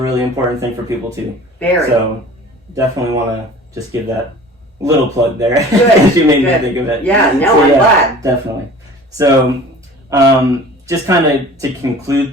important thing for people too. Very. So definitely want to just give that little plug there. Good. She made me think of it. Yeah, no, So, I'm glad. Definitely. So just kind of to conclude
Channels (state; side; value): normal; both; correlation 0.44